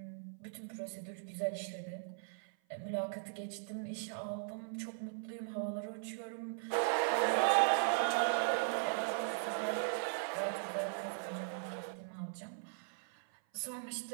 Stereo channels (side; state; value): left; silent; 52 dB below the other